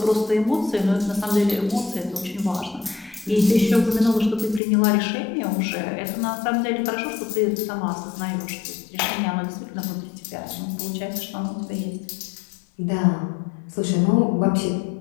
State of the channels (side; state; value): right; drops out; at 4.6 s